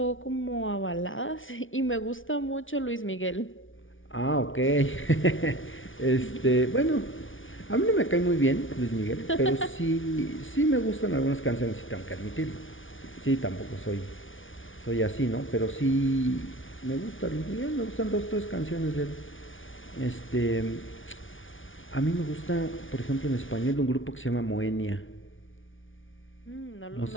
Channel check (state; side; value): late; right; 0.57 ms